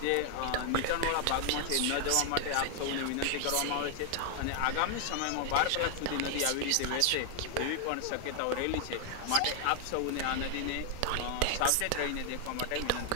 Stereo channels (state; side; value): different; both; correlation 0.00